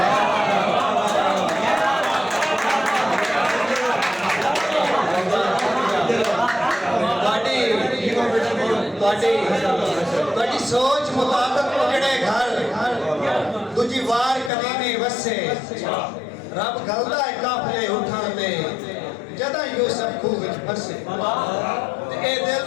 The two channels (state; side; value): drops out; right; at 14.5 s